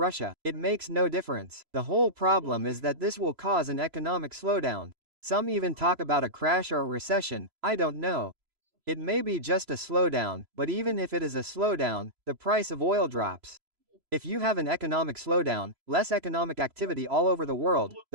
It makes no difference. The whole problem is that this will cause an economic slowdown. Some even talk about a crash or a recession, I don't know. It may be just a slowdown, but even if it is a slowdown, the price of oil drops. If you have an economic slowdown, less economic activity all over the world,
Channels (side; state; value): left; late; 3.0 ms